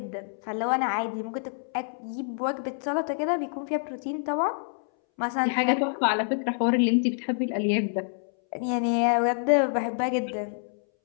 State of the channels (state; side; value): silent; right; 60 dB below the other